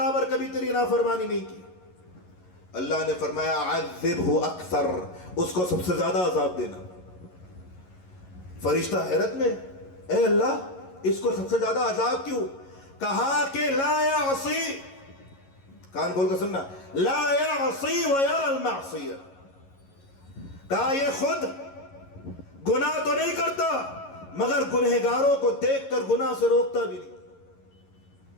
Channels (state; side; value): late; right; 11 ms